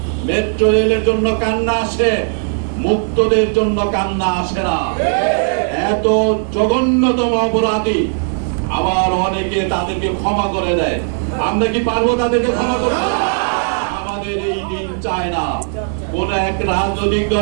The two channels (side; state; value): left; silent; 60 dB below the other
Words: মেট্রো রেলের জন্য কান্না আসে, মুক্তদের জন্য কান্না আসে না। এত জঘন্যতম অপরাধী, আবার অনেকে তাদেরকে ক্ষমা করে দেয়। আমরা কি পারবো তাদেরকে ক্ষমা করতে? আমাদের এই দিন চায় না। কোন এক রাজনৈতিক